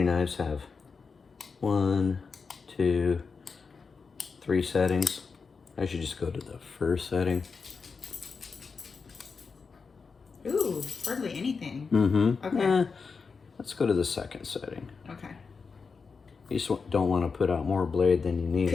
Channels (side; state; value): right; quieter; 5.0 dB